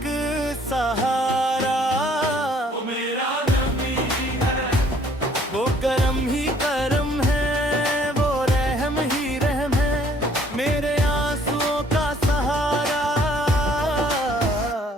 सहारा। वो मेरा नबी है, वो करम ही करम है, वो रहम ही रहम है, मेरे आंसुओं का सहारा।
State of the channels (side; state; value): both; normal; correlation 0.60